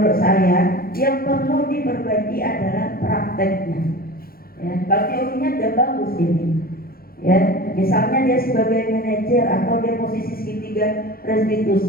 saya yang perlu diperbaiki adalah prakteknya. Ya, kalau teorinya udah bagus ini. Ya, misalnya dia sebagai manajer atau dia posisi segitiga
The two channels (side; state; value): right; late; 0.43 ms